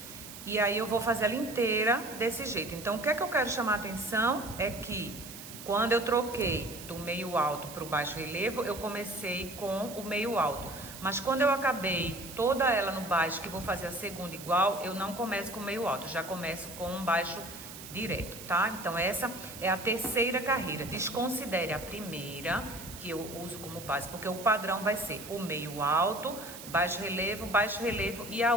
E aí eu vou fazer ela inteira desse jeito. Então, o que é que eu quero chamar a atenção é que quando eu troquei do meio alto para o baixo relevo, eu comecei com o meio alto. Mas quando eu acabei toda ela no baixo, que vou fazer a segunda igual, eu não começo com meio alto, já começo com um baixo direto, tá? Então essa é a terceira carreira. Desconsidere a primeira, que eu uso como base, porque o padrão vai ser o meio alto, baixo relevo, e a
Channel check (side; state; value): right; noise; hiss, 13 dB below the sound